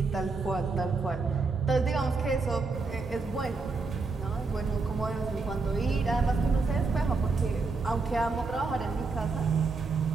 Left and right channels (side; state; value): left; quieter; 4.0 dB